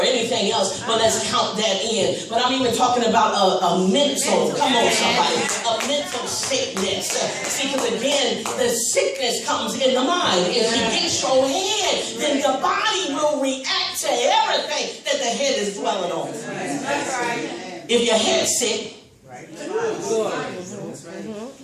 anything else, but let's count that in. But I'm even talking about a mental, come on somebody, a mental sickness. See, because again, the sickness comes in the mind. If you get your head, then the body will react to everything that the head is dwelling on. If your head's sick,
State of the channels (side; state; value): both; identical; correlation 1.00